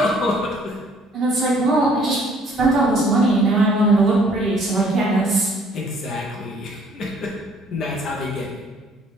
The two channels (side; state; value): both; normal; correlation 0.59